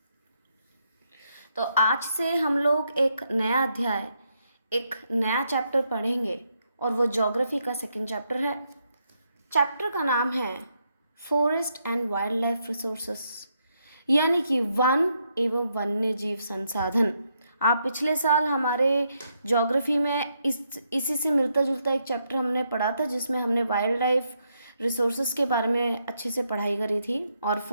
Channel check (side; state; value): both; inverted; correlation -0.78